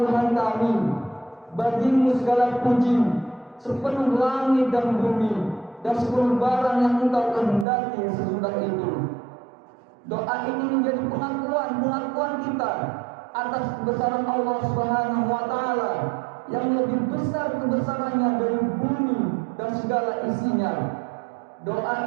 kami, bagimu segala puji sepenuh langit dan bumi dan seluruh barang yang Engkau kehendaki sesudah itu. Doa ini menjadi pengakuan kita atas kebesaran Allah Subhanahu wa Ta'ala yang lebih besar kebesarannya dari bumi dan segala isinya.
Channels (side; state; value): left; drops out; at 7.7 s